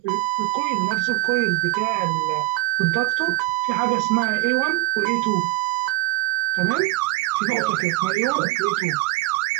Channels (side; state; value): left; quieter; 21.5 dB